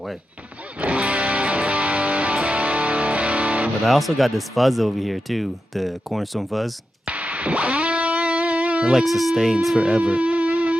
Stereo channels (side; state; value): both; normal; correlation 0.90